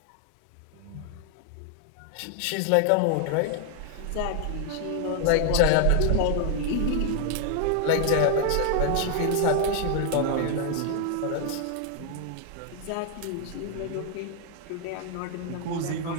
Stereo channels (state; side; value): different; both; correlation 0.00